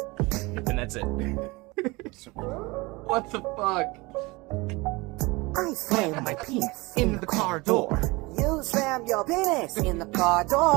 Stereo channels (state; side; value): quieter; left; 23.8 dB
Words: And that's it. What the fuck? I slammed my penis in the car door. You slammed your penis in the car